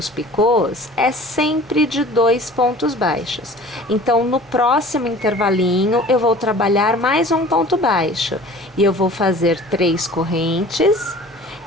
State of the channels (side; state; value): both; normal; correlation 0.45